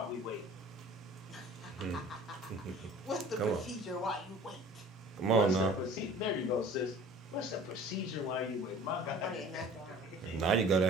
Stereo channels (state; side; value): normal; both; correlation 0.46